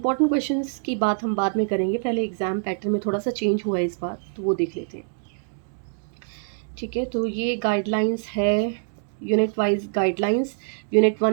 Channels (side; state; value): left; silent; 62 dB below the other